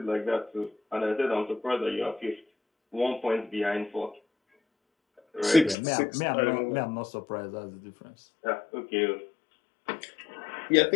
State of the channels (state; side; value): drops out; right; at 5.8 s